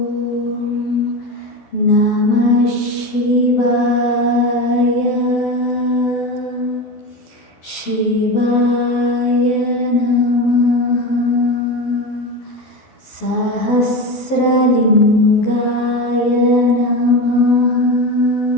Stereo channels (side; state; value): right; late; 12 ms